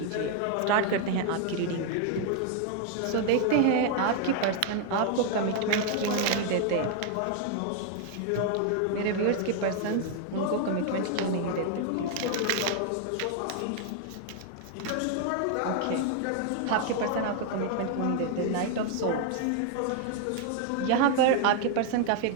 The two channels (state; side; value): different; both; correlation 0.00